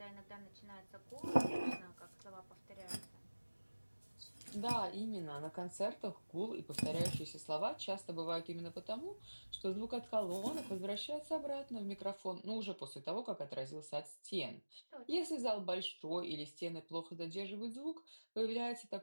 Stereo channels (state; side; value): inverted; both; correlation -1.00